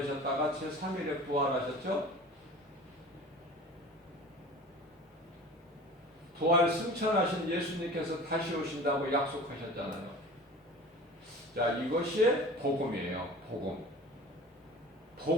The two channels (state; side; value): normal; both; correlation 0.39